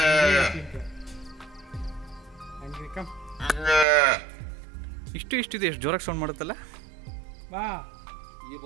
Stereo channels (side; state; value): left; drops out; at 3.9 s